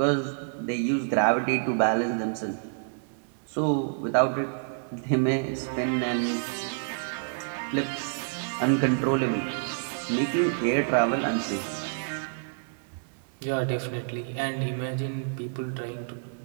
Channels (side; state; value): left; silent; 59 dB below the other